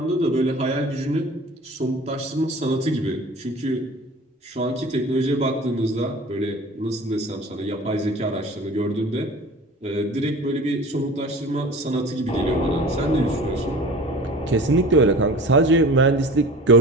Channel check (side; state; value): both; normal; correlation 0.40